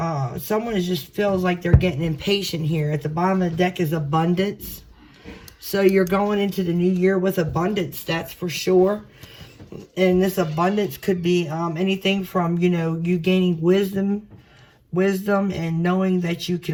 Someone just feels like they're getting impatient here. At the bottom of the deck is abundance. So you're going into the new year with abundance, that's for sure. And this abundance could be anything from, you know, you gaining wisdom and knowing that you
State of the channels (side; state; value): both; identical; correlation 1.00